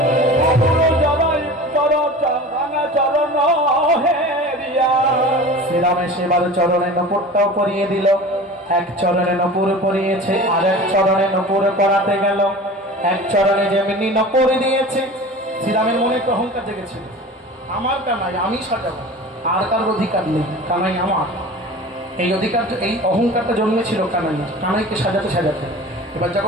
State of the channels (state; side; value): normal; both; correlation 0.37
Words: শ্রীরামে সেবার চরণে নপুরটাও পরিয়ে দিল। এক চরণে নপুর পরিয়েছে, আর এক চরণে নপুর পরাতে গেল। এক চরণে যেমনি নপুর দিয়েছে, শ্রীরামের মনে একটু অহংকার জেগেছিল, আমার কানাই, আমি সাজাবো, আর কার অধিকার নেই, কানাই আমার। এই অধিকার, এই অহংকারটা জন্মেছিল কানাইকে সাজাতে সাজাতে। এবার